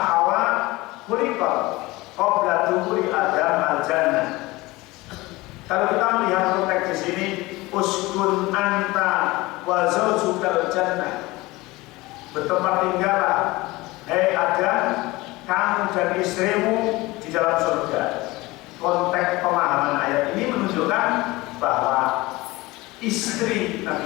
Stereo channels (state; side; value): quieter; right; 21.0 dB